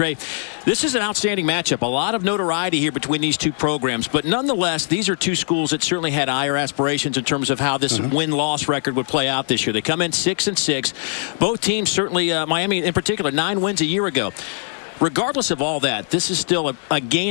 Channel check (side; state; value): right; silent; digital silence